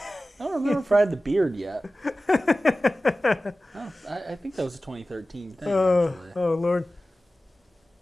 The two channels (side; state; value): both; normal; correlation 0.96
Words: I don't remember if I had the beard yet. I think that was a 2013 thing, actually. Oh Lord.